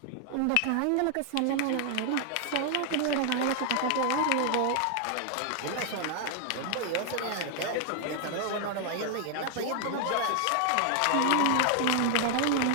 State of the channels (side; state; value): both; different; correlation 0.00